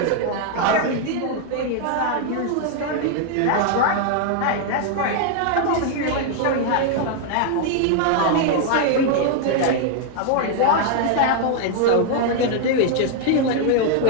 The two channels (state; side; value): different; both; correlation 0.00